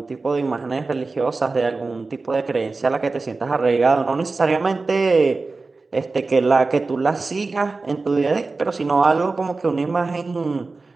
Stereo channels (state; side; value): quieter; left; 3.8 dB